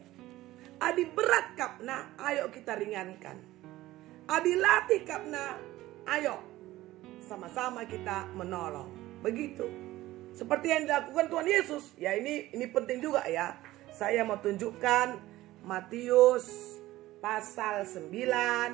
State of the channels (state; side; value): quieter; left; 16.6 dB